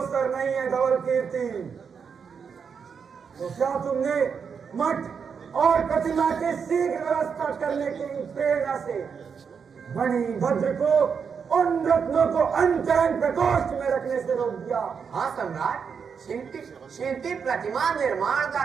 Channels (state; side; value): quieter; left; 6.4 dB